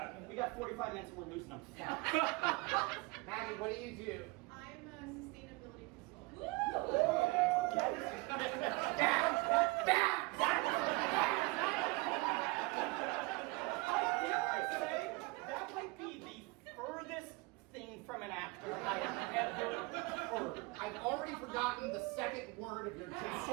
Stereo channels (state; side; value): quieter; left; 25.0 dB